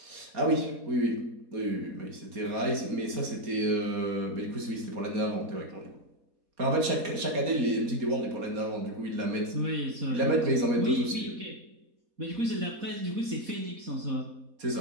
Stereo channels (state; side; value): late; left; 4.3 ms